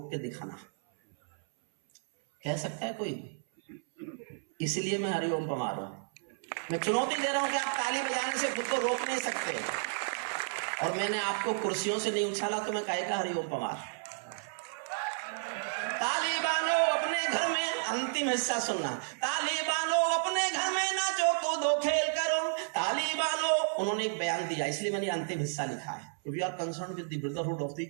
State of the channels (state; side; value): silent; left; 56 dB below the other